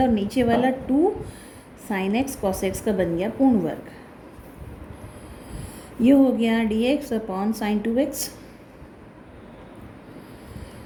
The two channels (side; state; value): both; identical; correlation 1.00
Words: और नीचे वाला 2 साइन एक्स कॉस एक्स का बन गया पूर्ण वर्ग। ये हो गया dx अपॉन साइन 2x